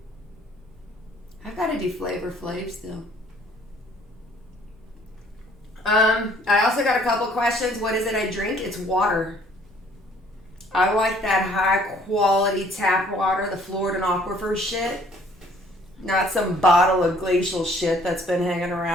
I've got to do Flavor Flav still. I also got a couple questions. What is it I drink? It's water. I like that high quality tap water, the Florida Aquifer shit. Not some bottle of glacial shit that's been hanging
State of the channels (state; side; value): normal; both; correlation 0.59